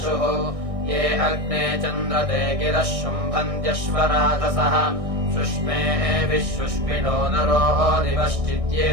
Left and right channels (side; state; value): left; late; 1.6 ms